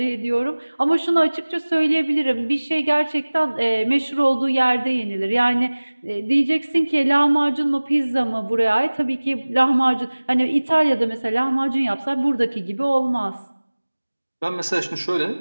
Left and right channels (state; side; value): inverted; both; correlation -1.00